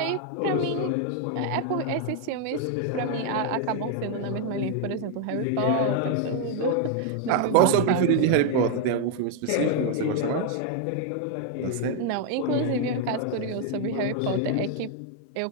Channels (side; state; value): both; different; correlation 0.00